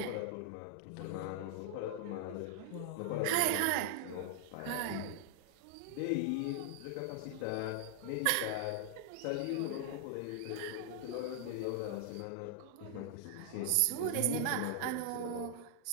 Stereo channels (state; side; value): different; both; correlation -0.01